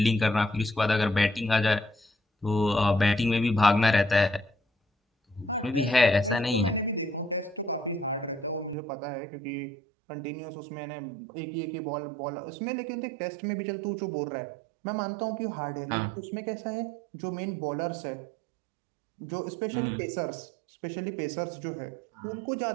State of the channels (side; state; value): left; drops out; at 8.8 s